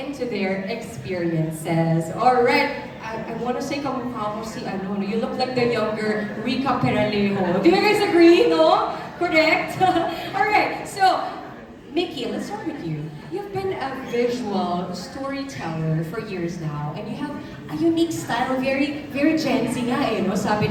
their experiences. Alright, I want to say kamukha mo si ano, you look like the younger Rica Peralejo. Do you guys agree, no? Correct? Alright, so Mickey, let's start with you. You've been a visual storyteller for years now, and you have a unique style, very, very Gen Z nga eh, no?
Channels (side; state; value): both; identical; correlation 1.00